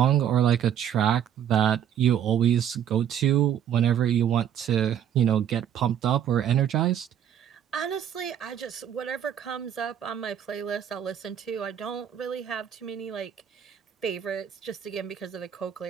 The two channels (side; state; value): left; quieter; 9.5 dB